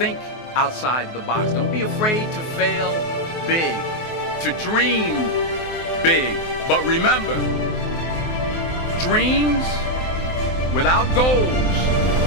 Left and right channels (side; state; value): right; late; 23 ms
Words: outside the box. Don't be afraid to fail big, to dream big. But remember, dreams without goals